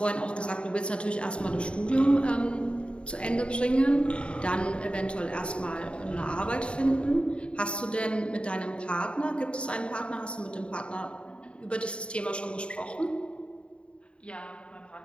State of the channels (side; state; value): right; late; 0.056 ms